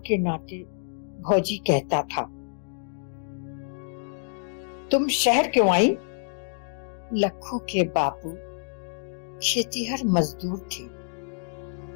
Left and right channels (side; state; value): right; silent; digital silence